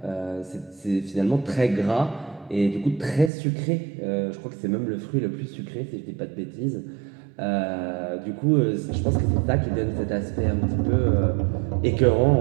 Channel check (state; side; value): drops out; left; at 3.3 s